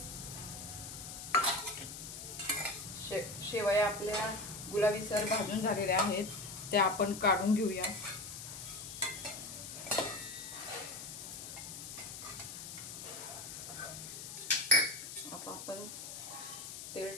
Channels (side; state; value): left; noise; hiss, 9 dB below the sound